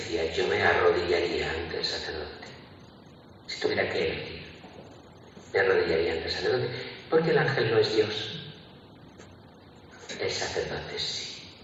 yo me arrodillaría ante el sacerdote. Si tuviera que elegir, me arrodillaría ante el sacerdote, porque el ángel no es Dios. El sacerdote sí.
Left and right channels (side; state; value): both; identical; correlation 1.00